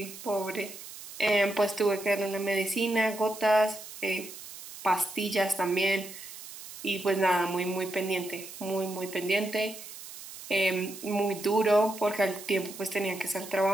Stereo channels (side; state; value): right; noise; hiss, 13 dB below the sound